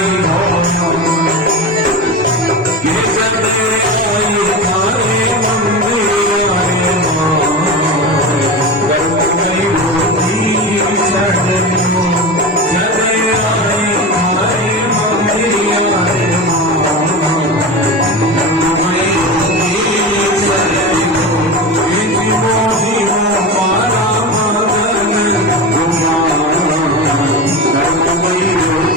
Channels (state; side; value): normal; both; correlation 0.24